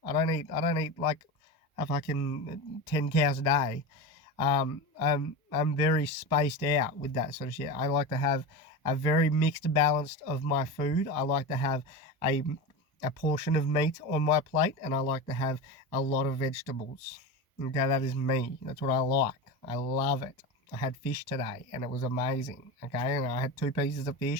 I don't eat like a fucking 10 cows a day. I'm very spaced out with that sort of shit. I like to have a very mixed balance of my food. I like to have a portion of meat on my plate, and I like to have a lot of vegetables. Okay, that is me. That's what I like. I love it. I had fish today, and it was amazing, okay? And I had 2 pieces of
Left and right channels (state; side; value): normal; both; correlation 0.23